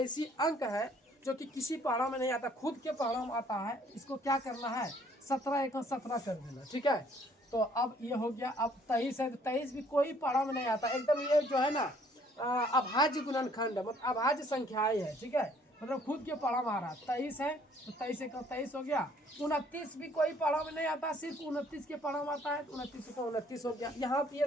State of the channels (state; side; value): normal; both; correlation 0.61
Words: अंक है जो कि किसी पहाड़ों में नहीं आता, खुद के पहाड़ों में आता है। इसको क्या करना है, 17 एक 17 कर देना, ठीक है। तो अब ये हो गया। अब 23 है तो 23 भी कोई पहाड़ों में नहीं आता, एकदम ये जो है ना अभाज्य गुणनखंड है, मतलब अभाज्य संख्याएं है, ठीक है। मतलब खुद के पहाड़ों में आ रहा है। 23 है तो 23 एक 23 हो गया। 29 भी कोई पहाड़ों में नहीं आता, सिर्फ 29 के पहाड़ों में आता है, तो 29 को 29 हो गया। यहाँ पे ये